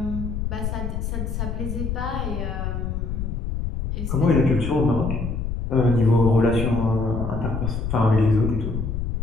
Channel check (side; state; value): left; noise; rumble, 3 dB below the sound